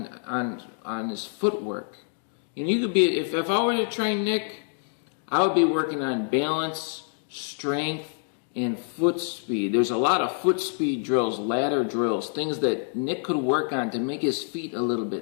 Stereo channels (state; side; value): silent; right; 61 dB below the other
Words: his footwork. You know, you could be, if I were to train Nick, I would be working on balance, strength, and foot speed. There's a lot of foot speed drills, ladder drills, things that Nick could work on to make his feet a little